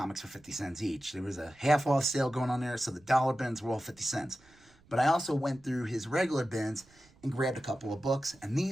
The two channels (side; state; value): right; noise; rumble, 29 dB below the sound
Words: for 50 cents each. There was a half off sale going on there, so the dollar bins were all 50 cents. But I also went through his regular bins and grabbed a couple of books, and